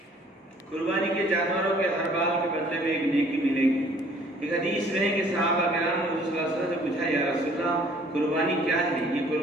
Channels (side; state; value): both; normal; correlation 0.57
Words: قربانی کے جانوروں کے ہر بال کے بدلے میں ایک نیکی ملے گی۔ ایک حدیث میں ہے کہ صحابہ کرام نے رسول اللہ صلی اللہ علیہ وسلم سے پوچھا، یا رسول اللہ قربانی کیا ہے؟ یہ